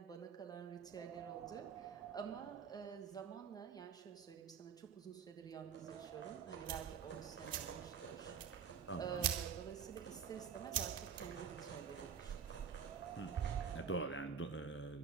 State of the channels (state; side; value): quieter; left; 7.3 dB